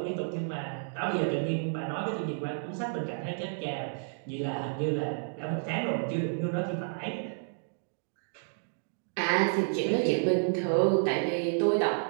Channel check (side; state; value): left; silent; digital silence